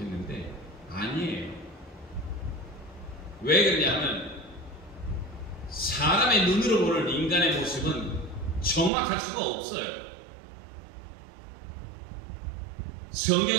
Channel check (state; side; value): drops out; left; at 8.9 s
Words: 아니에요. 왜 그러냐면 사람의 눈으로 보는 인간의 모습은 정확할 수가 없어요.